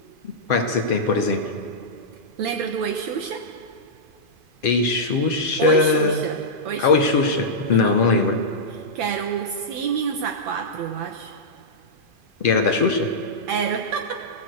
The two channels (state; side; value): late; left; 2.5 ms